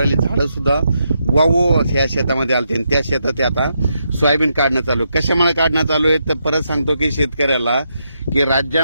झाडं सुद्धा वावो या शेतामध्ये आलते आणि त्या शेतात आता सोयाबीन काढणं चालू आहे। कशामुळे काढणं चालू आहे तर परत सांगतो की शेतकऱ्याला की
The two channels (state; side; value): inverted; both; correlation -0.81